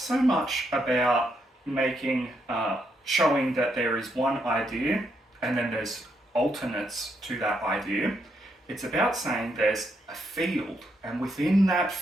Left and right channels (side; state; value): both; normal; correlation 0.77